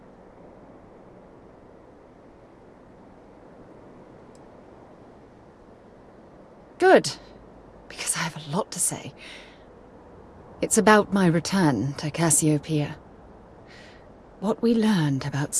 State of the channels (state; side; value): identical; both; correlation 1.00